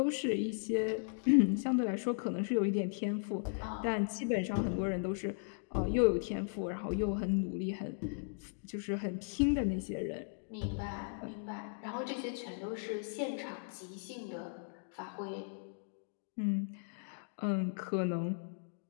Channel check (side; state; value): right; silent; digital silence